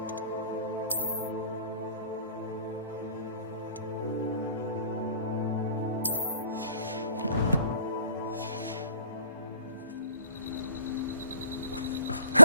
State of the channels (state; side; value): inverted; both; correlation -0.59